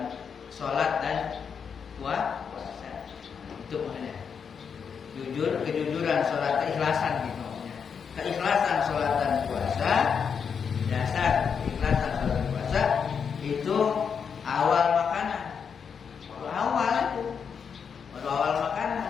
sholat dan puasa. Itu maksudnya jujur, kejujuran sholat, keikhlasan gitu maksudnya. Keikhlasan sholat dan puasa, dasar keikhlasan sholat dan puasa itu awal makanan. Baru awal makanan,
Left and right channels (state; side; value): quieter; right; 6.6 dB